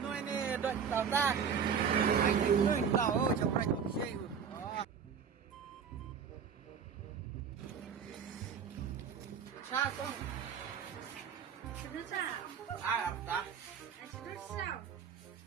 Noi ni dot tao ta. Ai ni tahu sampai buat saya. Sao con? Sudah sah. Ai ập ta? Sudah sah.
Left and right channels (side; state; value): left; quieter; 7.0 dB